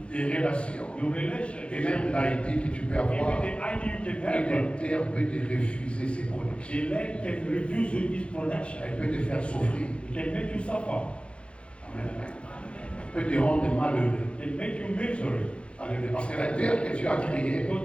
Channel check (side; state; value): right; late; 0.059 ms